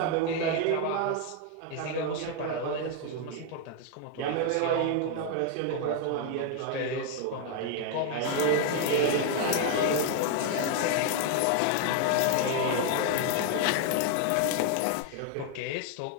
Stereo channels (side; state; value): both; different; correlation 0.00